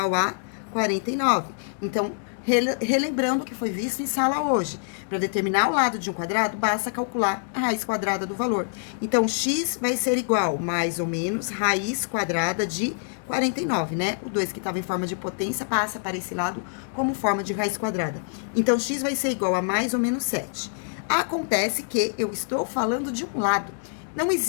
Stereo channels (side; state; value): right; silent; digital silence